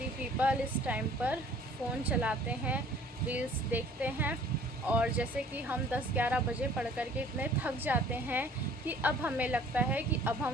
पीपल इस टाइम पर फ़ोन चलाते हैं, रील्स देखते हैं। और जैसे कि हम 10-11 बजे पढ़ कर के इतने थक जाते हैं कि अब हमें लगता है कि अब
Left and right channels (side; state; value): both; normal; correlation 0.53